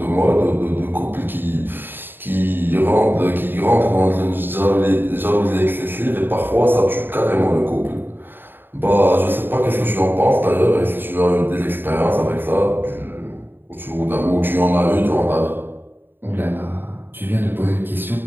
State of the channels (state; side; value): late; left; 0.096 ms